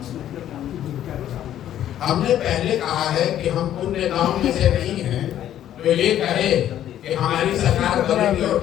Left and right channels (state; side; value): quieter; right; 11.4 dB